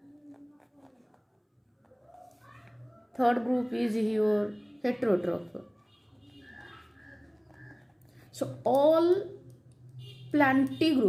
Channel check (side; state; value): both; identical; correlation 1.00